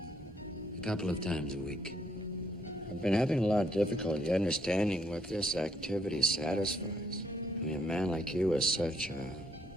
A couple of times a week. I've been having a lot of difficulty understanding what this activity satisfies. I mean, a man like you is such a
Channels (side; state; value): both; normal; correlation 0.71